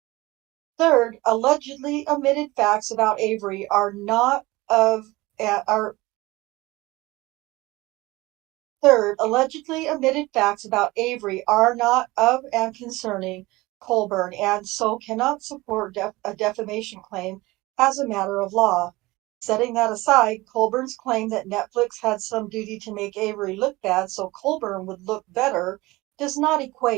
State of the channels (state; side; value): quieter; left; 20.6 dB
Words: Third, allegedly omitted facts about Avery are not of and concerning Colborn, and so cannot support a defamation claim as a matter of law. Setting that aside, Colborn's claim that Netflix had some duty to make Avery look bad so Colborn would look better does not